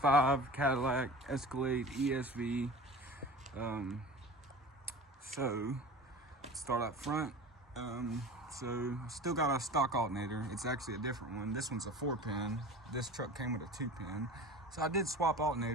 Cadillac Escalade ESV. So start up front. So still got a stock alternator. It's actually a different one. This one's a 4-pin. This truck came with a 2-pin. So I did swap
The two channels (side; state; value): both; normal; correlation 0.37